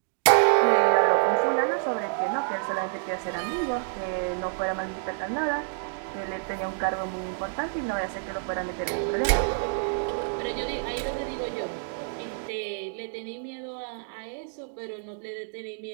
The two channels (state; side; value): silent; left; digital silence